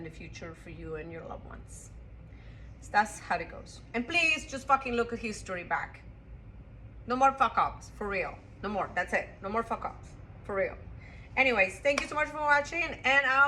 the future for you and your loved ones. So that's how it goes. And please just fucking look at history back. No more fuck ups, for real. No more. That's it. No more fuck ups, for real. Anyways, thank you so much for watching, and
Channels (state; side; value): identical; both; correlation 1.00